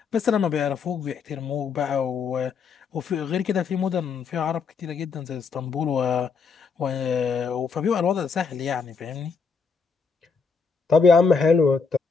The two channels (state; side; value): quieter; right; 5.3 dB